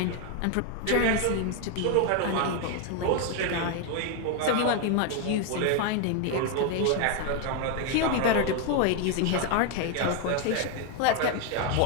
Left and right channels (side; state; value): both; different; correlation 0.01